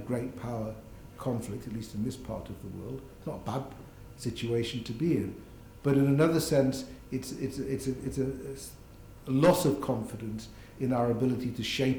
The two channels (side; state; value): both; identical; correlation 1.00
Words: great power conflict, at least in this part of the world. It's not a bad situation to be in. But in another sense, it's a loss of confidence in our ability to